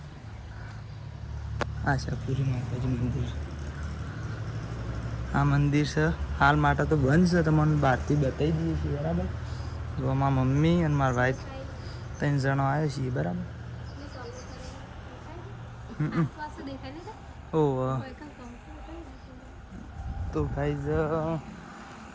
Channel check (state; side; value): identical; both; correlation 1.00